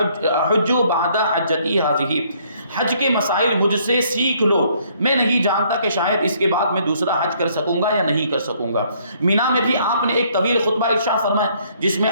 أَحُجُّ بَعْدَ حَجَّتِي هَٰذِهِ، حج کے مسائل مجھ سے سیکھ لو، میں نہیں جانتا کہ شاید اس کے بعد میں دوسرا حج کر سکوں گا یا نہیں کر سکوں گا۔ مینا میں بھی آپ نے ایک طویل خطبہ ارشاد فرمایا، جس میں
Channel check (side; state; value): both; inverted; correlation -0.65